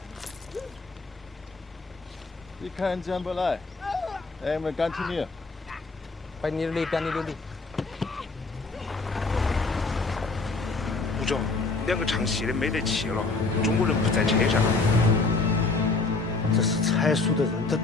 Die keinen Jambalei. Wir continue. 边你溜达。吴总，2个唱戏的没得气了，中国人不在车上。这是蔡叔的人，他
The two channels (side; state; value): right; quieter; 3.7 dB